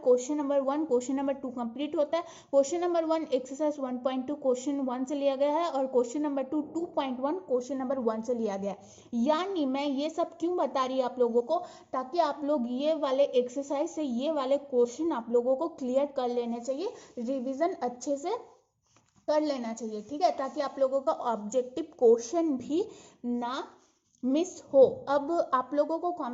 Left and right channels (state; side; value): identical; both; correlation 1.00